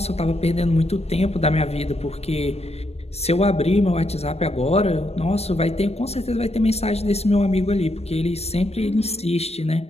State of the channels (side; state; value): right; late; 0.30 ms